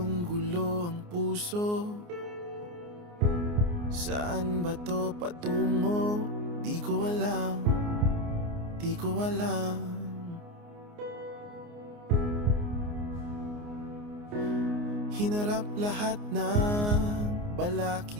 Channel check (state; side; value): late; left; 29 ms